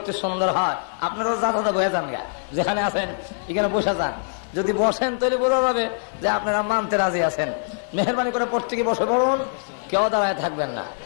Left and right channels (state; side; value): silent; right; digital silence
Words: সুন্দর হয়। আপনারাও যা বসে যান, যেখানে আছেন এখানে বসে যান। যদি বসেন তাহলে বোঝা যাবে যে আপনারা মানতে রাজি আছেন। মেহরবানি করে প্রত্যেকে বসে পড়ুন, কেউ দাঁড়ায় থাকবেন না,